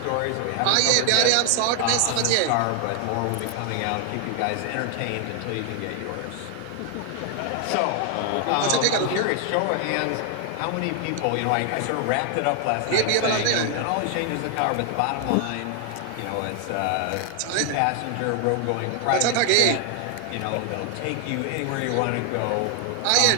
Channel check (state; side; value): different; both; correlation 0.00